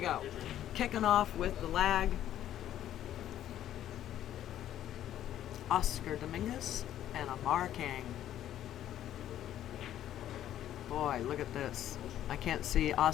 Kicking off with the lag. Oscar Dominguez and Amar Kang. Boy, look at this. I can't see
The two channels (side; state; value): right; quieter; 11.7 dB